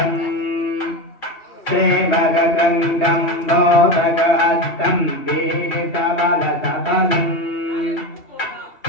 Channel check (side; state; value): right; late; 2.8 ms